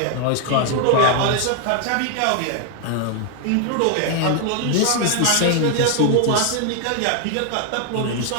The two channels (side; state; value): both; different; correlation 0.00